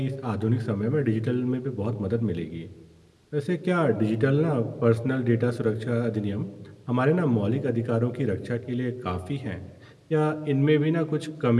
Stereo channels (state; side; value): identical; both; correlation 1.00